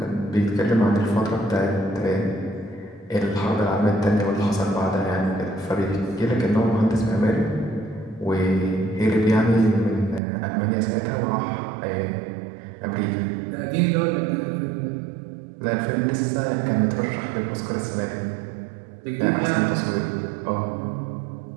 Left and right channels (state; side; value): drops out; left; at 10.2 s